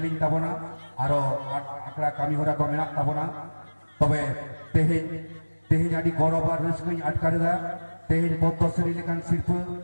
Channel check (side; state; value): both; inverted; correlation -1.00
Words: tabona aro akra kami hora ko menak tabona tobe tehin adi gorobar ruskui atkareda tehin poddosri lekan sirpu